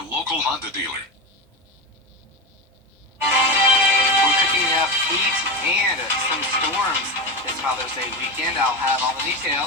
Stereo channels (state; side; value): normal; both; correlation 0.19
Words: local Honda dealer. We're cooking up heat and some storms this Father's Day weekend. I'll have all the